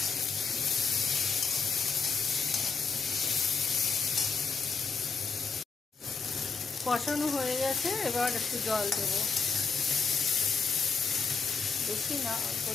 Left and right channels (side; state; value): right; quieter; 5.2 dB